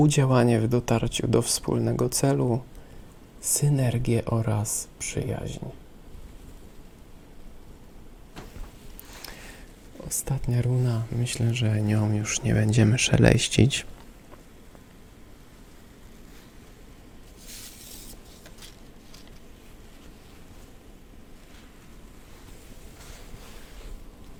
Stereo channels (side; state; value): both; identical; correlation 1.00